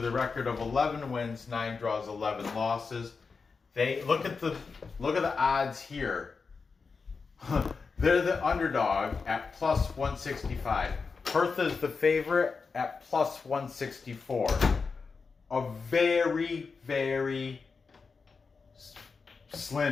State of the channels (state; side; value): quieter; right; 4.9 dB